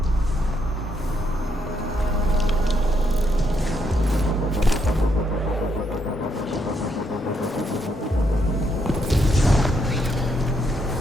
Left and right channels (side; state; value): both; normal; correlation 0.76